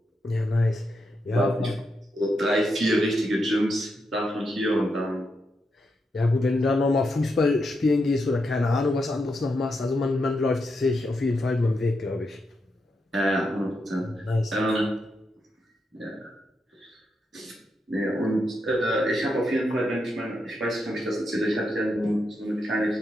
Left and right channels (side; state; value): both; normal; correlation 0.83